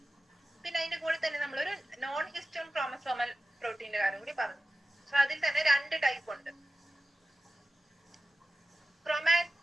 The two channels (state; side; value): normal; both; correlation 0.94